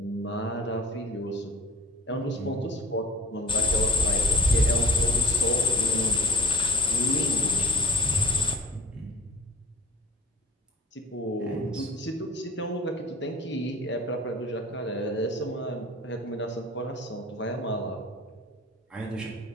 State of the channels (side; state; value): both; normal; correlation 0.44